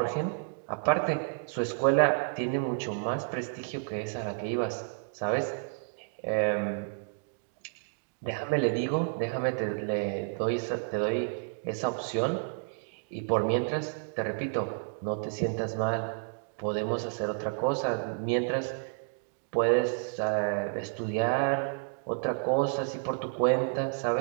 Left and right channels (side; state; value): left; silent; digital silence